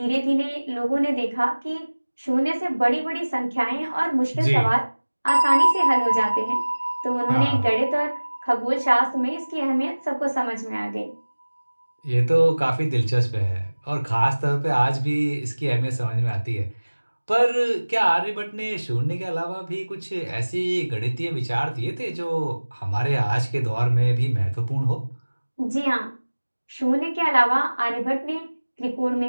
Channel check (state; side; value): inverted; both; correlation -1.00